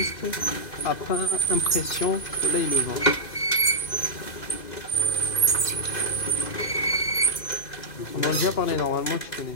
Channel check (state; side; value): late; right; 2.6 ms